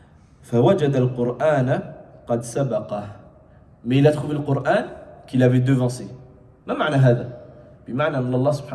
فوجد القرآن قد سبقه. Mais il a trouvé le Coran qu'il avait devancé. ما معنى هذا؟ بمعنى أن الله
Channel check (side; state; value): both; identical; correlation 1.00